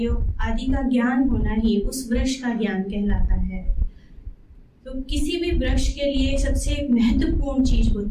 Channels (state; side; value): identical; both; correlation 1.00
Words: आदि का ज्ञान होना ही उस वृक्ष का ज्ञान कहलाता है। तो किसी भी वृक्ष के लिए सबसे महत्वपूर्ण चीज